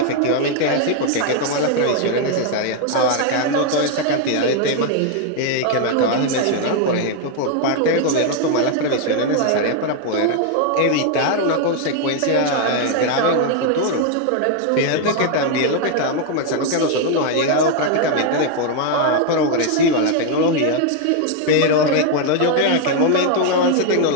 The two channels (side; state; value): both; different; correlation 0.00